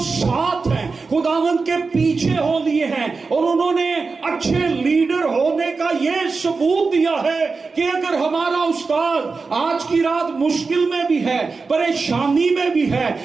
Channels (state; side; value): quieter; left; 4.4 dB